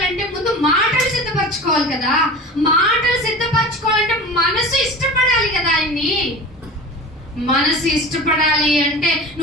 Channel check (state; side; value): normal; both; correlation 0.35